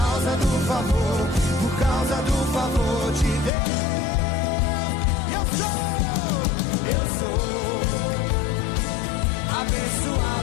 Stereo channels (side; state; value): right; drops out; at 3.5 s